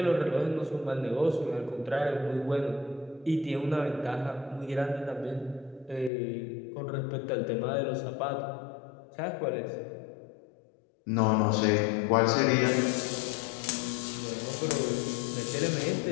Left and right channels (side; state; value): right; drops out; at 6.1 s